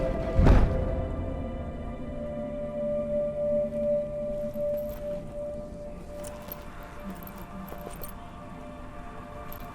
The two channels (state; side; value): identical; both; correlation 1.00